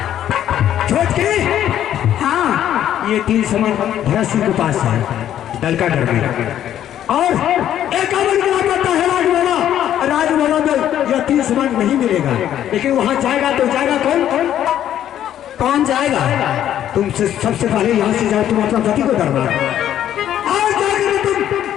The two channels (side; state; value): right; quieter; 11.0 dB